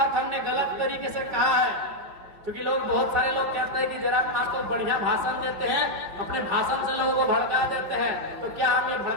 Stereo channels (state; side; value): late; left; 5.1 ms